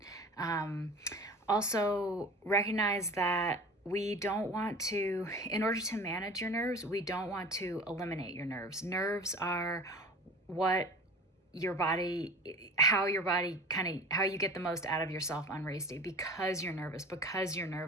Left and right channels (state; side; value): normal; both; correlation 0.38